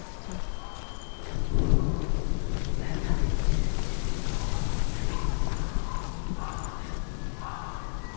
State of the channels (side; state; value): right; silent; digital silence